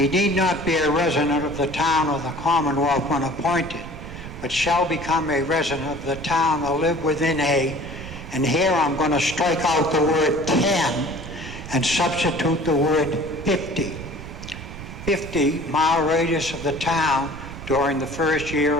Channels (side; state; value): right; noise; rumble, 11 dB below the sound